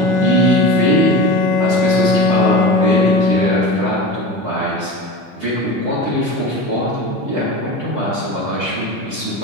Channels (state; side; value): normal; both; correlation 0.29